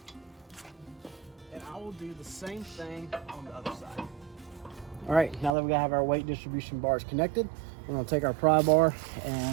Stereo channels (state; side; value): drops out; left; at 5.5 s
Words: and I will do the same thing on the other side. All right, now that we have our weight distribution bars connected, we're going to take our pry bar